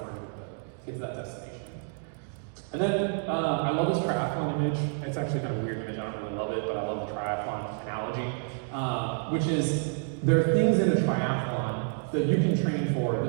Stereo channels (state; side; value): silent; left; 59 dB below the other